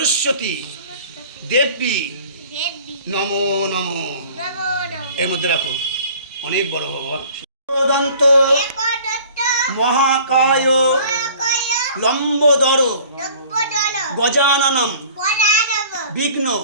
দেবী নমো নমো। এর মধ্যে রাখো, অনেক বড় ভগবান। দন্ত মহাকায় লম্বোদর গজাননম বিঘ্ন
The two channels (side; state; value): both; inverted; correlation -0.49